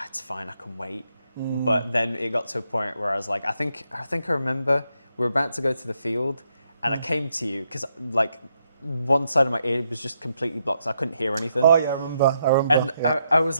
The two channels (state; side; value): inverted; both; correlation -0.79